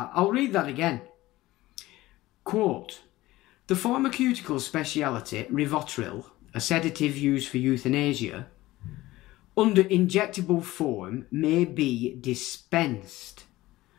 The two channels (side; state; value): right; quieter; 17.7 dB